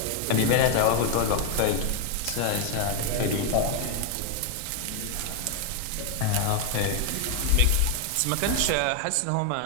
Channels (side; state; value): both; different; correlation 0.01